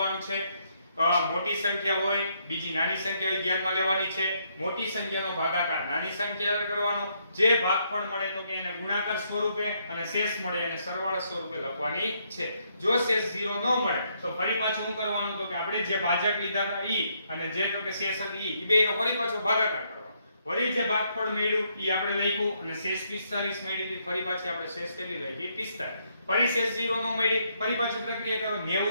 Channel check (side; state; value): both; inverted; correlation -0.74